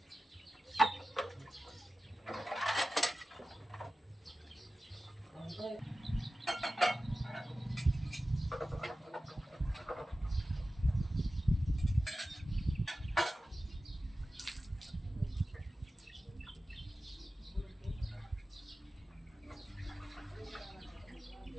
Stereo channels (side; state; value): both; normal; correlation 0.94